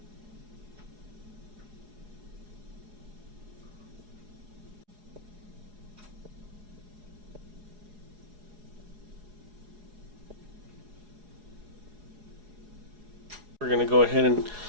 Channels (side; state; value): left; late; 4.8 ms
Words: We're going to go ahead and